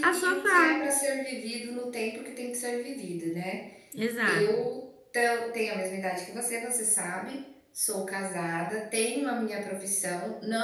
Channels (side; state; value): both; identical; correlation 1.00